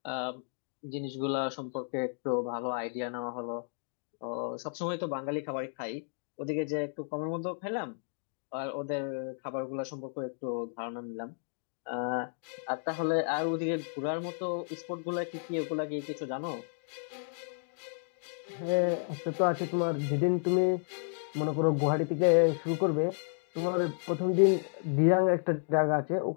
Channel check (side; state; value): right; silent; digital silence